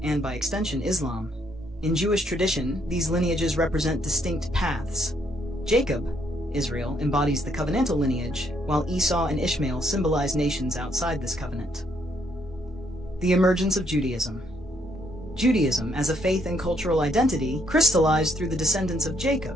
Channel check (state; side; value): normal; both; correlation 0.71